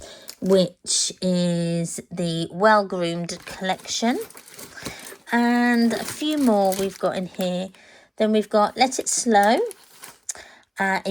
which is the Well Groomed collection. And a few more we've got in here. Then we've got Let It Slow,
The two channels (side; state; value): both; identical; correlation 1.00